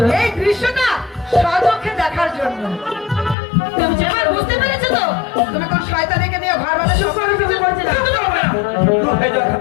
এই দৃশ্যটা সচক্ষে দেখার জন্য তুমি যে এবার বুঝতে পেরেছো তো? তুমি কোন শয়তানকে নিয়ে ঘর বাঁধা শুরু করে কিছু করছে না। দূর হয়ে যাও এখান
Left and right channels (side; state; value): right; drops out; at 3.4 s